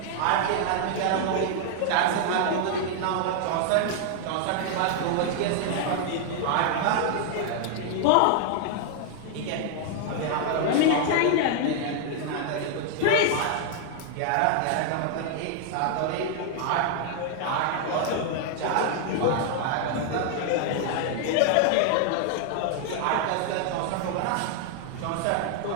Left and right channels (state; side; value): different; both; correlation 0.00